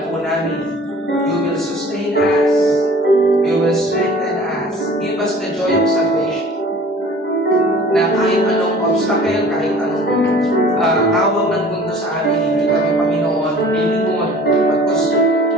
po namin, you will sustain us, you will strengthen us, give us the joy of salvation. Na kahit anong obstacle, kahit anong tawag ng mundo sa amin, hindi kami, Panginoon, lilingon. Because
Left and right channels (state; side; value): normal; both; correlation 0.48